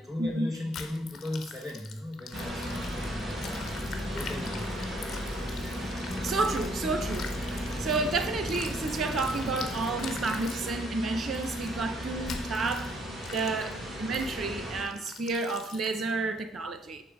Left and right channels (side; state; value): both; normal; correlation 0.65